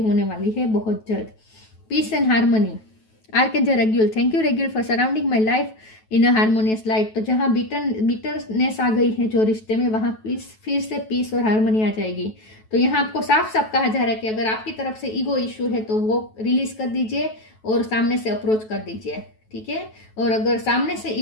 होने वाली है बहुत जल्द। Peace and harmony, archangel Raguel. Thank you Raguel for surrounding my life in a harmonious light. तो जहाँ बिटरनेस आ गई है जो रिश्ते में, वहाँ फिर से पीस और हार्मनी आ जाएगी। तो यहाँ आपको साफ साफ कहा जा रहा है कि अगर आपकी तरफ से ईगो इश्यू है तो वो रिलीज कर दीजिए और सामने से अप्रोच कर दीजिए। ठीक है। और अगर सामने से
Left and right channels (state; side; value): late; right; 9.2 ms